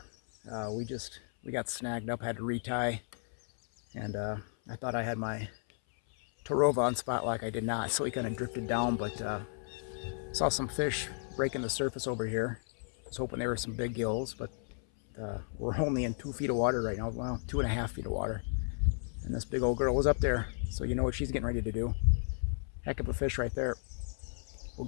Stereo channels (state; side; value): silent; right; 55 dB below the other